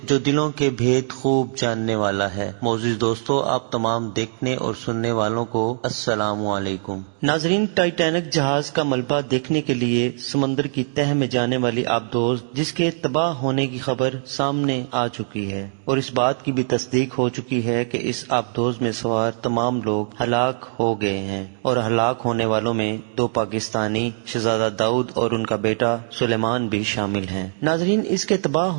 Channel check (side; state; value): left; silent; digital silence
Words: جو دلوں کے بھید خوب جاننے والا ہے۔ معزز دوستو، آپ تمام دیکھنے اور سننے والوں کو السلام علیکم۔ ناظرین، ٹائٹینک جہاز کا ملبہ دیکھنے کے لیے سمندر کی تہہ میں جانے والی آبدوز جس کے تباہ ہونے کی خبر سامنے آ چکی ہے، اور اس بات کی بھی تصدیق ہو چکی ہے کہ اس آبدوز میں سوار تمام لوگ ہلاک ہو گئے ہیں، اور ہلاک ہونے والوں میں 2 پاکستانی شہزادہ داؤد اور ان کا بیٹا سلیمان بھی شامل ہیں۔ ناظرین، اس کے تباہ